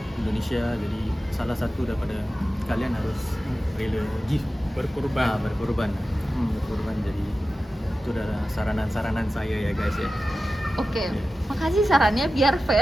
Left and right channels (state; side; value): normal; both; correlation 0.94